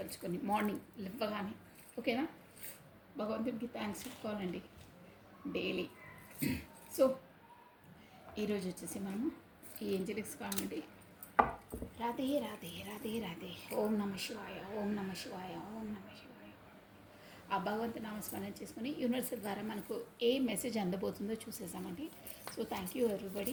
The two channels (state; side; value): identical; both; correlation 1.00